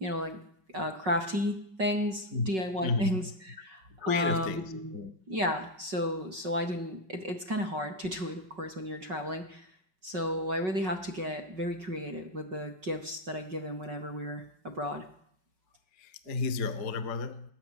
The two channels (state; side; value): late; left; 5.4 ms